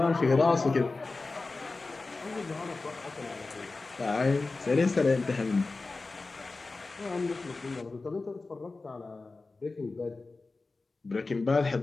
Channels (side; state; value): right; quieter; 3.6 dB